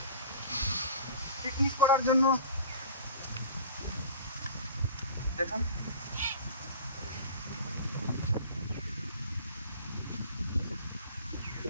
পিকনিক করার জন্য। দেখুন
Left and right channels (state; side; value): inverted; both; correlation -0.41